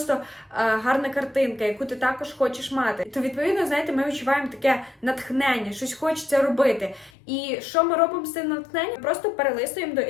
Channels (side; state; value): right; drops out; at 7.1 s